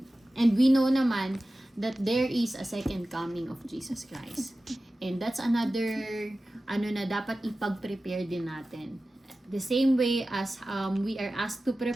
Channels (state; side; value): normal; both; correlation 0.95